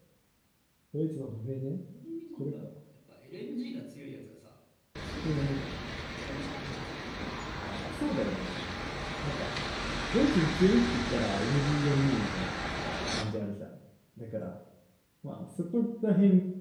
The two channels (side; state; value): both; identical; correlation 1.00